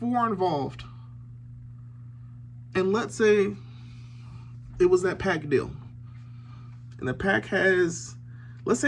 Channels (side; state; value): both; identical; correlation 1.00